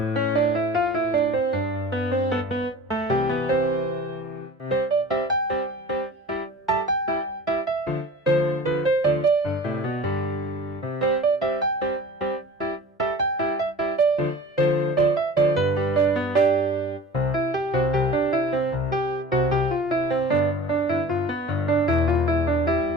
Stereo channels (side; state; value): both; normal; correlation 0.40